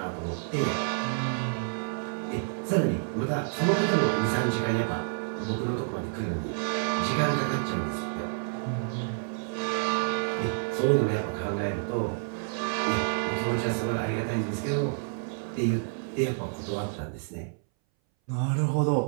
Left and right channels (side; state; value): left; silent; 59 dB below the other